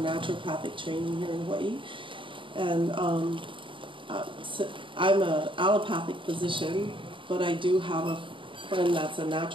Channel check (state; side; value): late; left; 0.25 ms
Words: training here in Hawaii. And so I'm an allopathic physician, but I do have a friend that's a